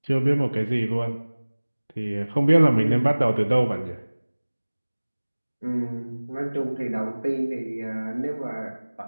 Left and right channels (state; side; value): inverted; both; correlation -1.00